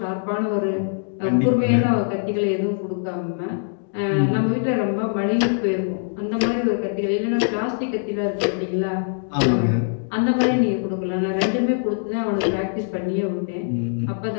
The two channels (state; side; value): silent; right; digital silence